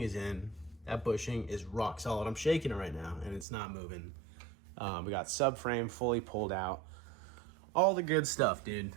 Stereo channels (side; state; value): left; drops out; at 3.5 s